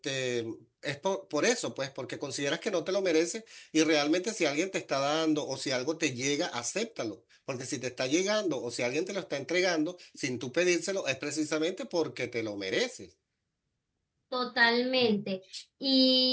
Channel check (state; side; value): identical; both; correlation 1.00